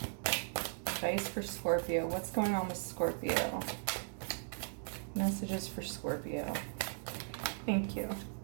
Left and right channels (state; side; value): silent; left; digital silence